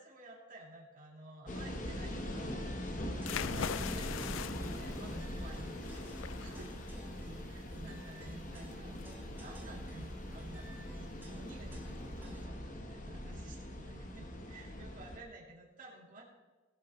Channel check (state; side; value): normal; both; correlation 0.60